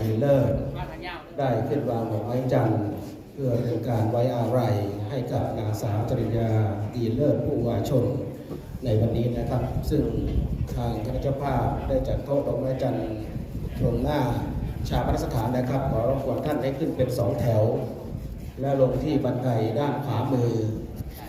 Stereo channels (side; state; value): both; identical; correlation 1.00